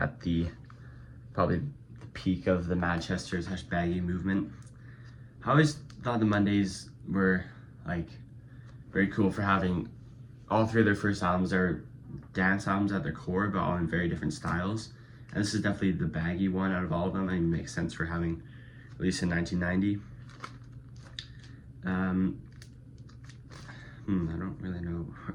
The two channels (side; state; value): both; identical; correlation 1.00